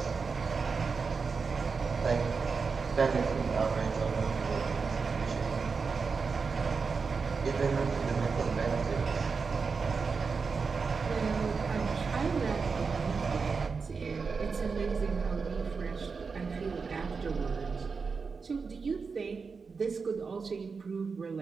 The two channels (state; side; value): quieter; left; 5.0 dB